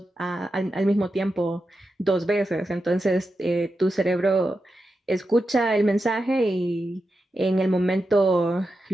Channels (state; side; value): normal; both; correlation 0.89